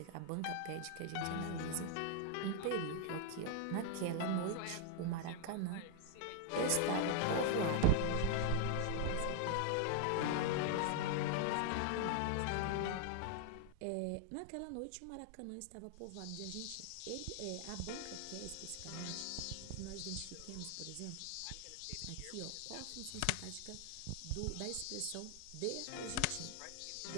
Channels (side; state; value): both; different; correlation 0.00